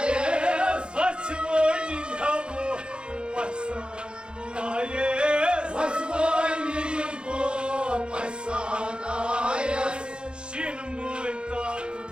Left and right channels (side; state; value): left; late; 0.052 ms